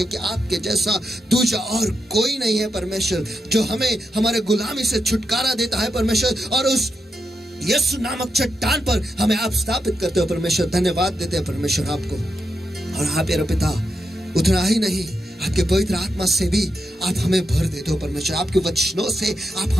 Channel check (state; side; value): normal; both; correlation 0.85